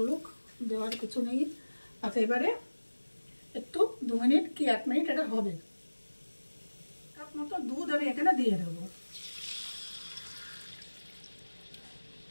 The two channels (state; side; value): inverted; both; correlation -1.00